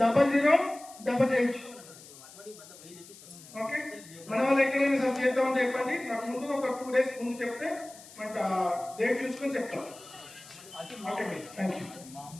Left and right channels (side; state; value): left; noise; hiss, 19 dB below the sound